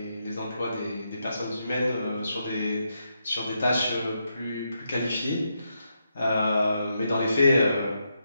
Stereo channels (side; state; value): both; inverted; correlation -0.82